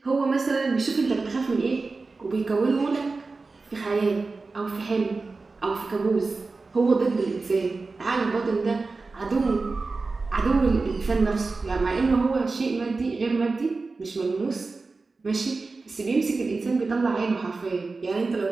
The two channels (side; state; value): left; quieter; 3.9 dB